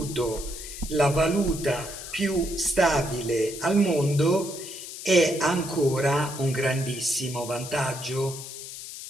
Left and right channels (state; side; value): noise; left; hiss, 11 dB below the sound